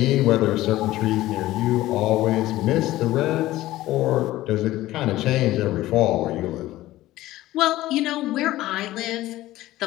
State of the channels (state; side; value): quieter; right; 16.1 dB